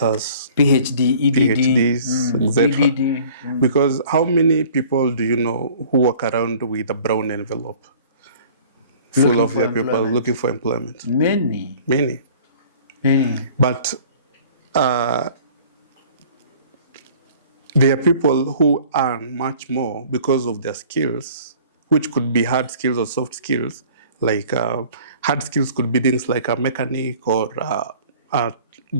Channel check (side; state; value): both; inverted; correlation -0.50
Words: PhD, EDD, PhDs, etc. EDD. Because how many people do you know who walk around with a brown envelope full Looking of for their people employment. looking for employment? Many. Many. But there are people who earn much more because of their skills, which could be hard skills or soft skills. Like hard skills could be things like a mechanic or a